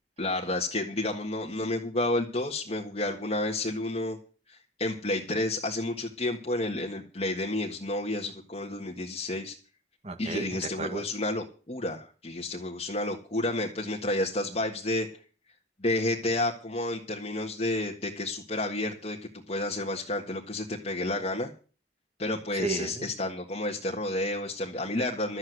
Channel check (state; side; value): normal; both; correlation 0.30